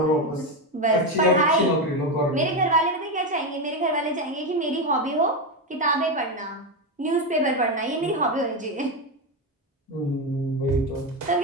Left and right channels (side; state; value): both; normal; correlation 0.11